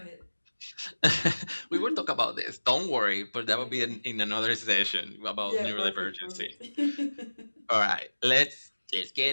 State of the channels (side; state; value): both; inverted; correlation -1.00